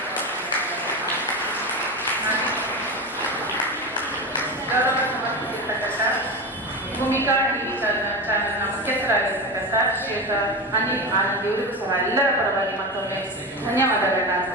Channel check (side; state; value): both; normal; correlation 0.22